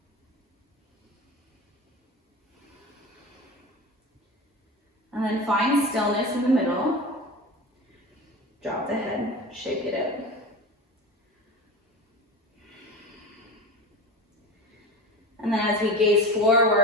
And then find stillness in the middle. Drop the head, shake it out. And then as we gaze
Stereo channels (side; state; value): both; normal; correlation 0.28